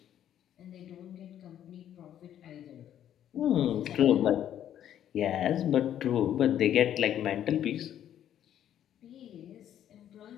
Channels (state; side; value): quieter; right; 10.7 dB